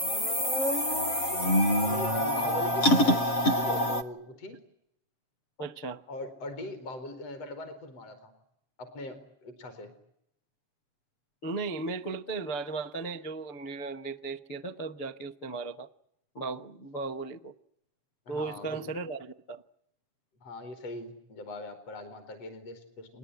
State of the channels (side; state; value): right; late; 7.5 ms